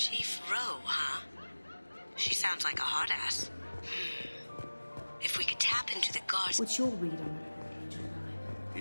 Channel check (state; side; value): inverted; both; correlation -1.00